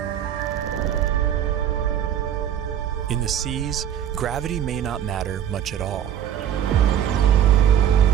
In the seas, gravity may not matter much at all.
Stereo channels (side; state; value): left; quieter; 9.8 dB